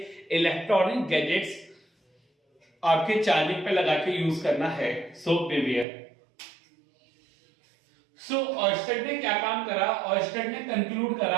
इलेक्ट्रॉनिक गैजेट्स आपके चार्जिंग पे लगा के यूज करना है। सो बिवियर। सो ऑर्स्टेड ने क्या काम करा? ऑर्स्टेड ने कंक्लूड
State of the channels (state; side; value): drops out; left; at 5.9 s